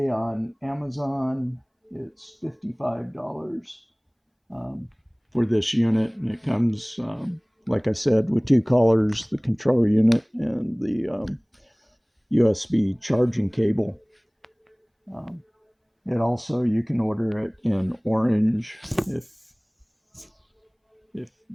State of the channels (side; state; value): both; identical; correlation 1.00